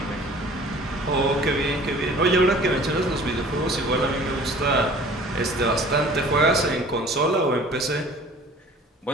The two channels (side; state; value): both; normal; correlation 0.48